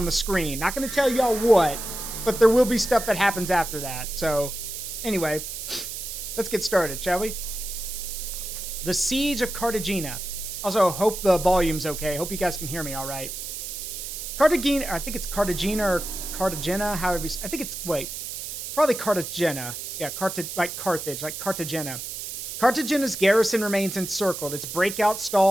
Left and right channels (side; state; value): right; noise; hiss, 7 dB below the sound